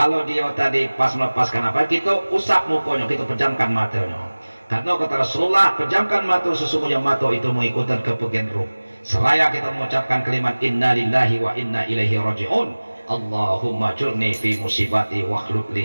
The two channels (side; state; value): both; inverted; correlation -1.00